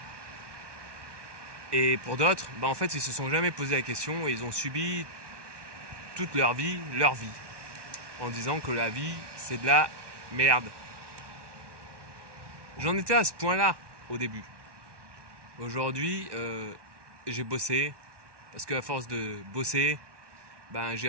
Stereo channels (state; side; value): late; left; 1.2 ms